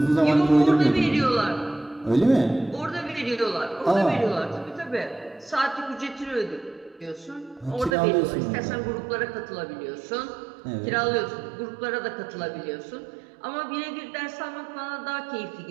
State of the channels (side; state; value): left; drops out; at 8.0 s